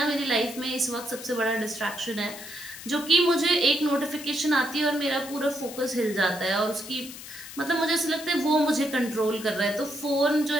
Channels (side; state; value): left; noise; hiss, 13 dB below the sound